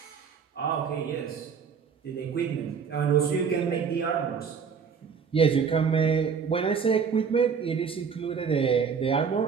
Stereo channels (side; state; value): left; quieter; 6.3 dB